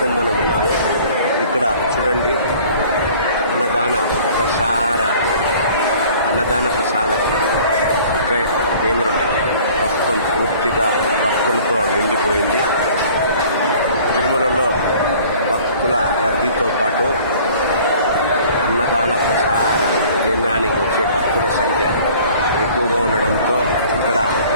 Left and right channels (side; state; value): both; inverted; correlation -0.51